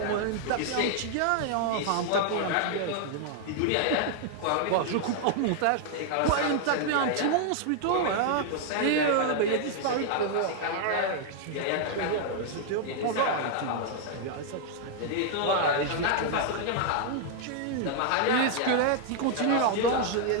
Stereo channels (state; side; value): different; both; correlation 0.00